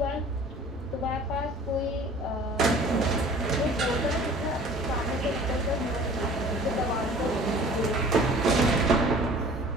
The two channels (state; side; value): normal; both; correlation 0.48